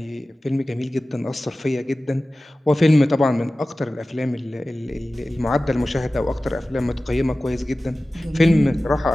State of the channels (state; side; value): normal; both; correlation 0.96